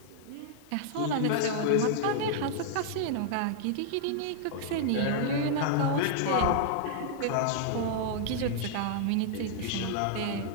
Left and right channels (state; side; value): different; both; correlation -0.01